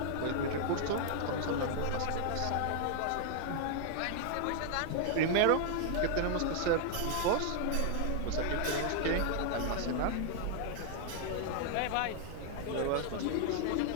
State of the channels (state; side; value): different; both; correlation 0.00